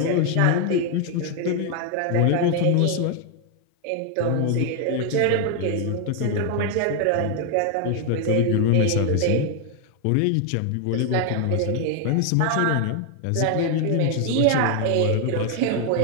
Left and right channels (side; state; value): both; different; correlation 0.00